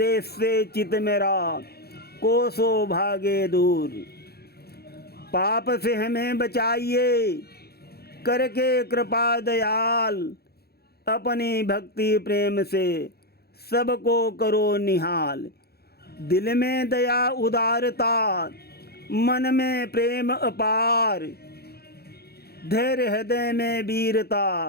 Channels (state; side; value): late; right; 0.46 ms